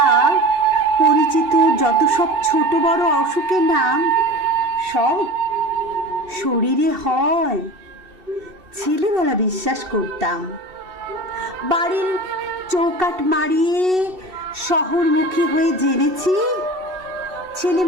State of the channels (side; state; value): left; late; 2.7 ms